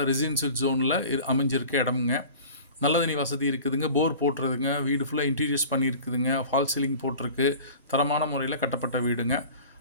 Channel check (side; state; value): both; inverted; correlation -0.40